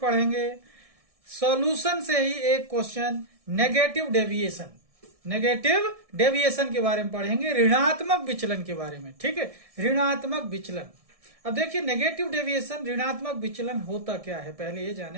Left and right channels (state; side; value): late; left; 1.6 ms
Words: पढ़ेंगे सॉल्यूशन से ही एक question negative deviation. Negative deviation के बारे में पढ़ेंगे, ऋणात्मक विचलन के बारे में। ठीक है, ऋणात्मक विचलन। अब देखिए, नेगेटिव डेविएशन, ऋणात्मक विचलन होता क्या है, पहले ये